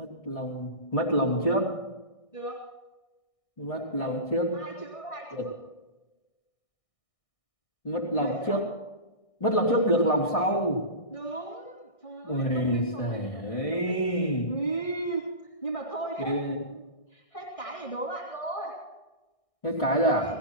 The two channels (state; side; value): late; right; 1.6 ms